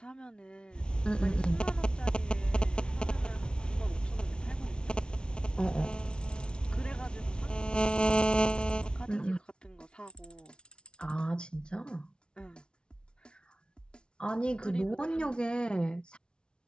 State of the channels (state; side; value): late; right; 0.056 ms